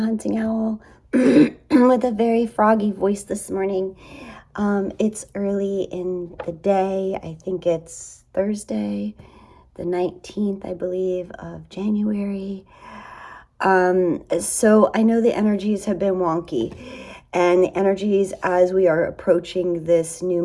Owl with a very froggy voice this morning. It's early in the day. I think it's Thursday, the 19th, I believe, of January. So I know the energies have been wonky, and the energies as we are approaching this new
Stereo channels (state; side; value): identical; both; correlation 1.00